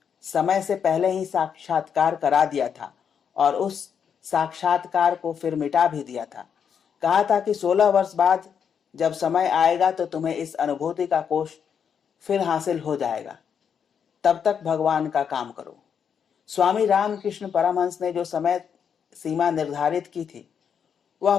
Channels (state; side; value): quieter; right; 7.4 dB